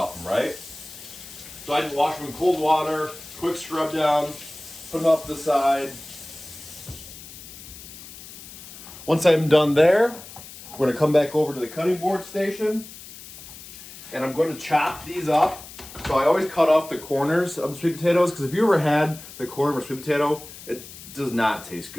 them, right? So I just wash them in cold water, quick scrub down, put them off to the side. Once I'm done there, we're gonna come back over to the cutting board station and I'm going to chop these up. So I always cut off the corners of the sweet potatoes because if you ever had the corner of a sweet potato, it does not taste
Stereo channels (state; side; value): noise; left; hiss, 16 dB below the sound